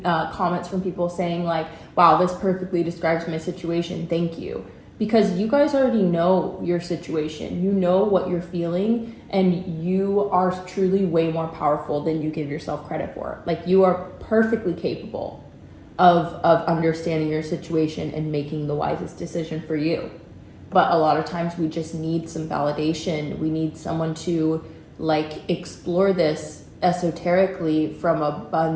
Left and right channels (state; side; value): identical; both; correlation 1.00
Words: comments from people saying like, wow, this perfectly describes my situation, thank you. Because you guys already know your situation. You know what you're feeling, and you are truly way more powerful than you give yourself credit for. Like, you are perfectly capable of understanding your situation and making the wisest decision for you. But a lot of times we just need some validation. We need someone to like explore this esoterically from a